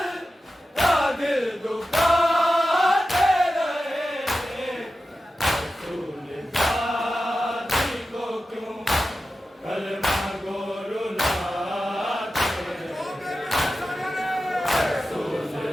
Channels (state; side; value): normal; both; correlation 0.93